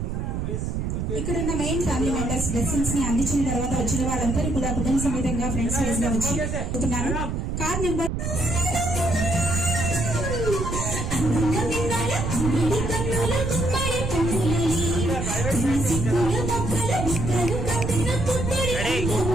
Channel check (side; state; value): right; noise; rumble, 2 dB below the sound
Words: ఇక్కడున్న మెయిన్ ఫ్యామిలీ మెంబర్స్ బ్లెస్సింగ్స్ ని అందించిన తర్వాత వచ్చిన వాళ్ళందరూ కూడా కుటుంబ సమేతంగా ఫ్రెండ్స్ వైజ్ గా వచ్చి కార్ నెంబర్